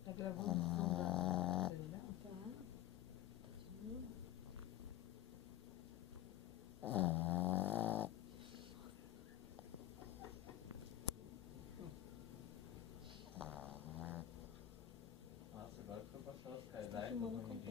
Tá gravando o som da terminal? Tá. Continua. Nossa, agora que eu passar os Tá caidais. filmando ao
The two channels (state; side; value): quieter; right; 12.7 dB